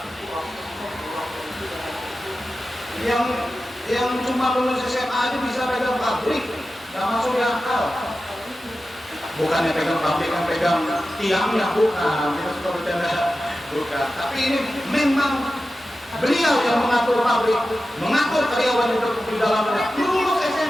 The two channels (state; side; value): normal; both; correlation 0.93